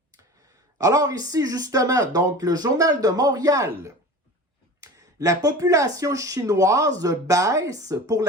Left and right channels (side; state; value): both; normal; correlation 0.35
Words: Alors ici, justement, donc le Journal de Montréal. La population chinoise baisse pour